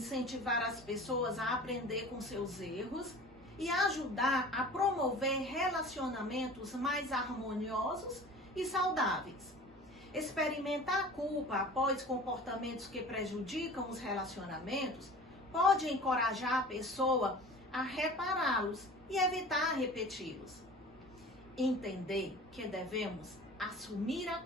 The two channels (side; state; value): both; normal; correlation 0.41